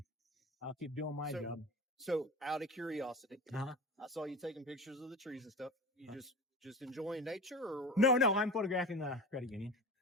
I'll keep doing my job. So out of curiosity, Uh-huh. I saw you taking pictures of the trees and stuff. You just enjoying nature, or No, I'm photographing the credit union.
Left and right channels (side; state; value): both; normal; correlation 0.30